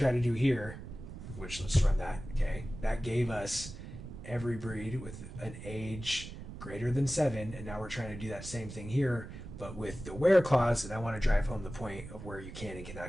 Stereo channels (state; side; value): noise; right; rumble, 11 dB below the sound